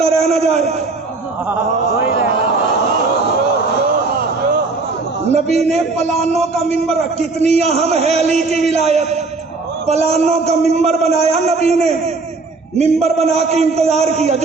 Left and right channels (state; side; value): quieter; left; 3.8 dB